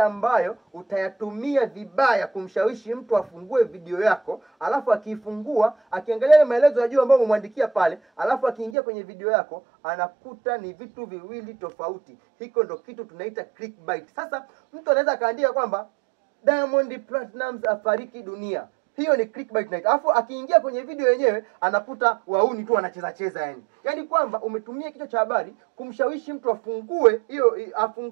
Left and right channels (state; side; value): drops out; left; at 8.8 s